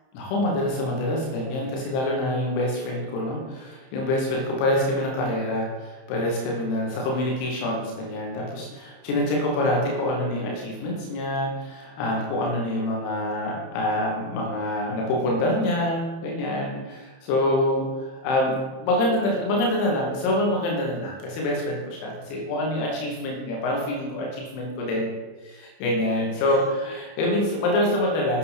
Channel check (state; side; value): late; right; 30 ms